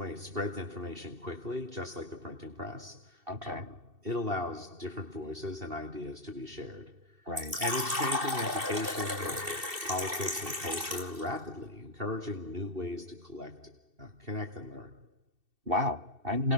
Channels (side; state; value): left; late; 2.7 ms